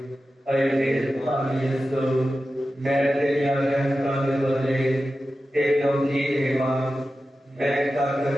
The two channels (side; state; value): both; normal; correlation 0.93